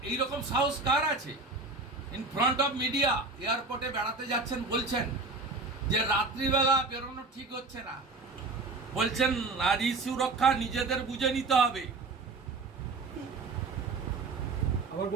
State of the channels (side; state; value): left; quieter; 3.6 dB